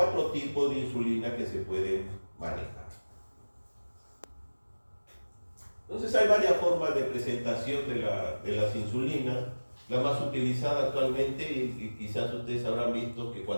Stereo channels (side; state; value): both; inverted; correlation -1.00